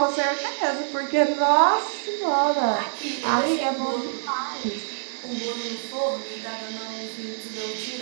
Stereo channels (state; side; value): silent; left; 58 dB below the other